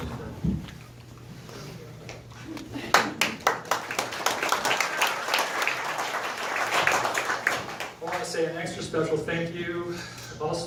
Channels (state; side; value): identical; both; correlation 1.00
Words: I want to say an extra special thank you